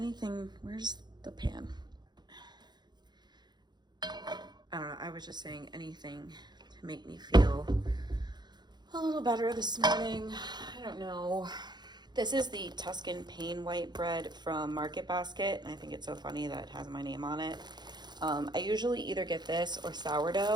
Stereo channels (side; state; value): left; late; 0.21 ms